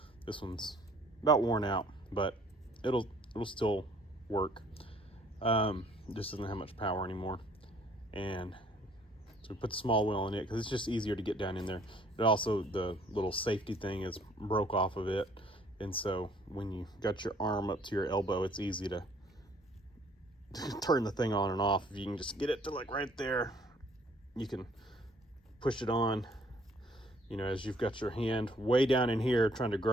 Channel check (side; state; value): both; normal; correlation 0.60